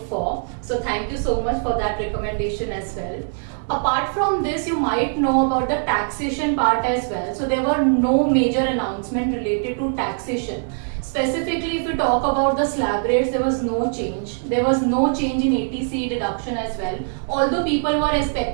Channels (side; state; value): left; silent; digital silence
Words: for. So thank you so much for that recommendation as well. Apart from this, you might know about the taxation part as well. So there were no major announcement related to taxation. Specifically, if you talk about the slab rates, there was no change. There was no change in ATC deduction as well. Although people were